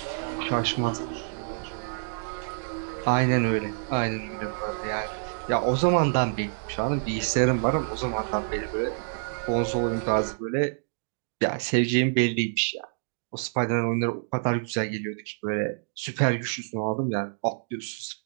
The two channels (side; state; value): left; silent; digital silence